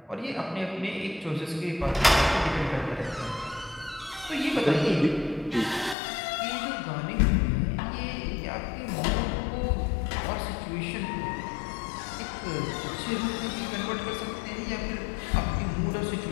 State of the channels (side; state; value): right; drops out; at 6.0 s